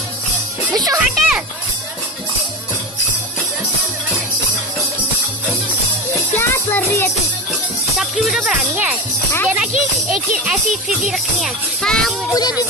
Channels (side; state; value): both; normal; correlation 0.24